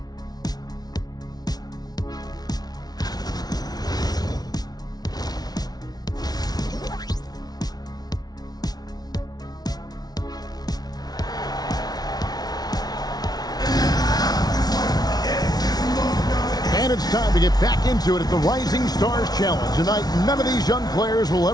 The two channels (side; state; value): right; late; 0.19 ms